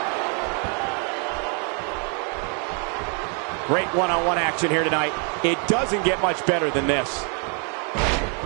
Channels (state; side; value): quieter; left; 38.4 dB